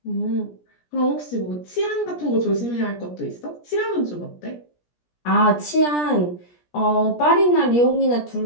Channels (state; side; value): late; right; 17 ms